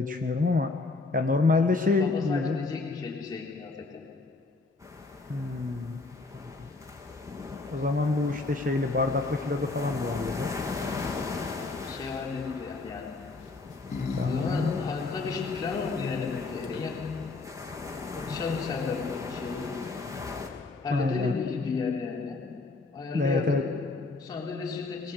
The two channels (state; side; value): quieter; right; 3.6 dB